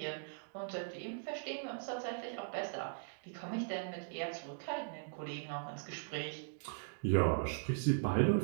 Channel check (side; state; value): left; silent; digital silence